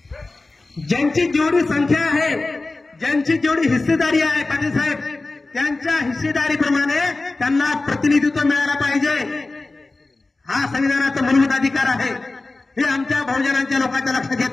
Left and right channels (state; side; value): quieter; right; 3.3 dB